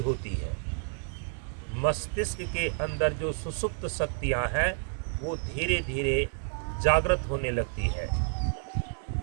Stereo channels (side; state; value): left; silent; 58 dB below the other